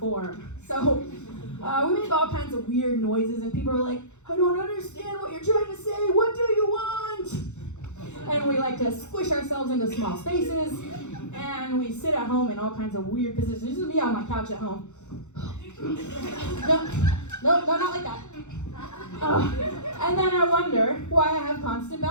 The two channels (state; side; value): late; right; 0.83 ms